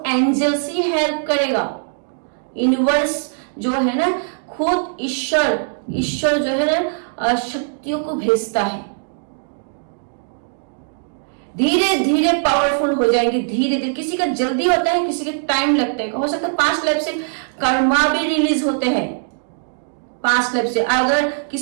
एंजल्स ही हेल्प करेगा, यूनिवर्स जो है ना, खुद ईश्वर जो है ना शक्तियों को भेजता है। धीरे धीरे पावरफुल हो जाएंगे, धीरे धीरे। किसी का जल्दी होता है, किसी का टाइम लगता है। हो सकता है 5 लाइफ से कर्मा भी रिलीज होते हैं, 5 लाइफ से। अगर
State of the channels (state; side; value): silent; left; digital silence